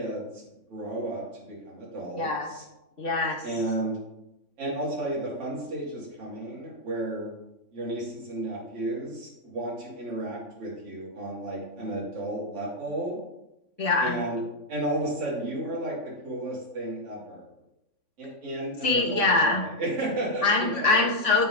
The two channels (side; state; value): left; late; 3.5 ms